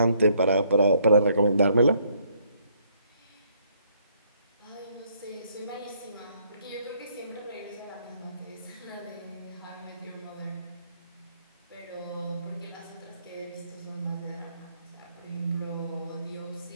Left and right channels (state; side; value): inverted; both; correlation -0.68